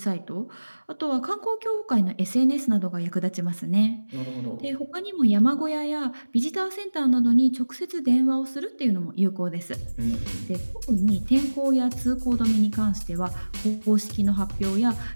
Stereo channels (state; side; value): inverted; both; correlation -1.00